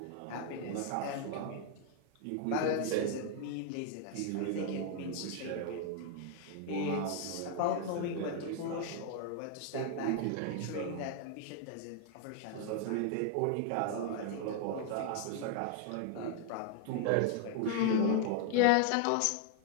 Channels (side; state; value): both; different; correlation 0.00